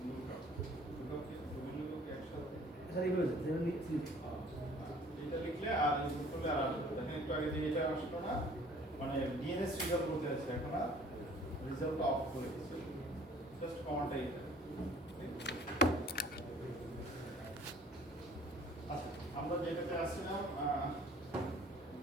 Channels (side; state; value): both; normal; correlation 0.52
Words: স্যার এইভাবে এটা লিখলে আর ইনপুট করলে আর দেখেন একটু আগে যে এটা আসলো না, মানে ডিএনএস রেজাল্ট বলতে আছে, এখন আর রেজাল্টটা অফ করে দিয়েছে, জাস্ট কমান্ডটা এটা। আচ্ছা, আমরা যেটাতে আসছিলাম